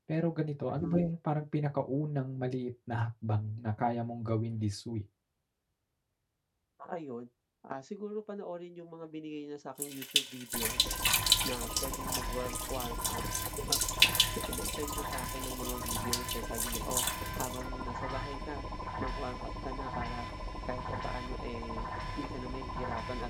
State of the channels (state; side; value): identical; both; correlation 1.00